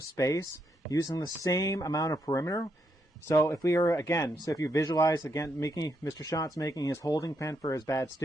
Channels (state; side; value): normal; both; correlation 0.78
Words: space using the same amount of perimeter. So if we are, again, so if you visualize, again, Mr. Schott's making his holding pen for his bad